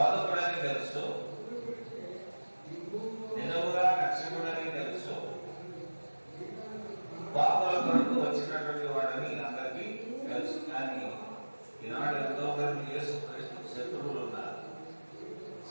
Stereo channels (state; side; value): inverted; both; correlation -1.00